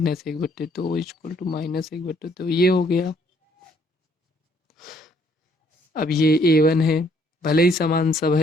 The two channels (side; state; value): both; normal; correlation 0.65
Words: इक्वल टू -1/2, ये हो गया। अब ये A1 है, भले ही समान सब